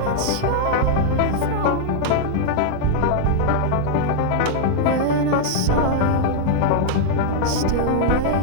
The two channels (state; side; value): different; both; correlation 0.00